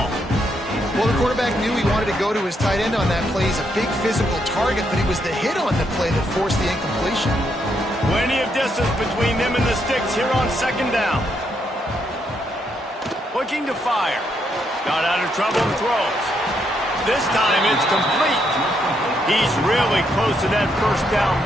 Well, the quarterback knew he wanted to go to his tight end on that play. He's a big physical target, but it was the hit on the play that forced the incompletion. Plenty of distance between them and the sticks here on second down. Looking to fire. Got out of trouble and throws. This time it's complete. He's really close to that first down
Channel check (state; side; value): normal; both; correlation 0.77